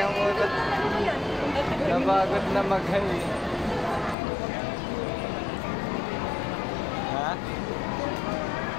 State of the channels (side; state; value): right; drops out; at 4.2 s